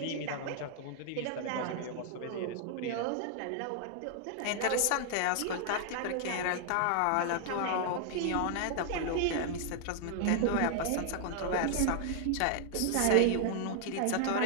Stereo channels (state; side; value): different; both; correlation 0.00